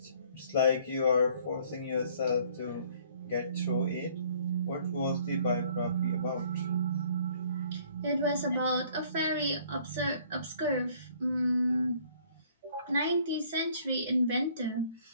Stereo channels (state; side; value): inverted; both; correlation -0.58